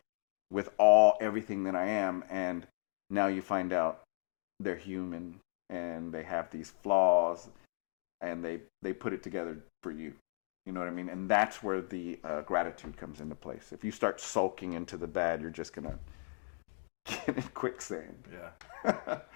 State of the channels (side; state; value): right; silent; 54 dB below the other